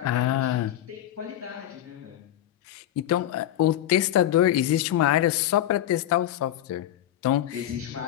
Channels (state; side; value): quieter; right; 12.3 dB